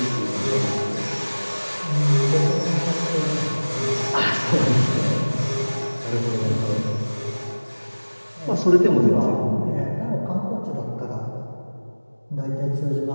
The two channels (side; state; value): both; inverted; correlation -1.00